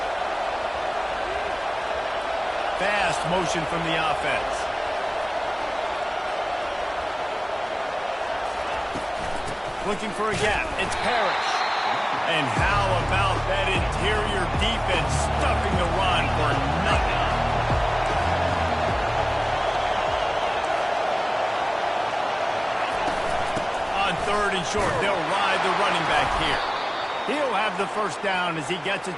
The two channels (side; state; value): both; identical; correlation 1.00